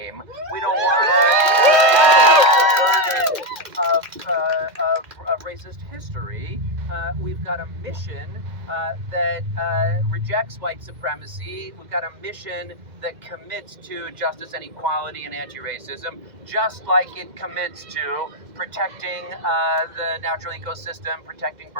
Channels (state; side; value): late; left; 2.1 ms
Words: We don't want to carry the burden of racist history. We've got a mission that rejects white supremacy. We've got a mission that commits to justice and equality and anti-racism, just like it commits to protecting the natural ecosystem, protecting